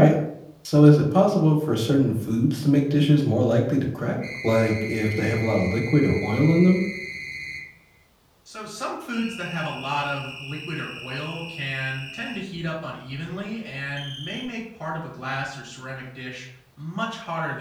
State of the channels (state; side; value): identical; both; correlation 1.00